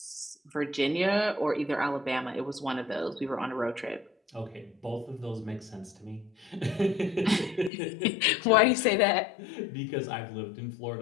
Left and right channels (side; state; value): right; drops out; at 7.7 s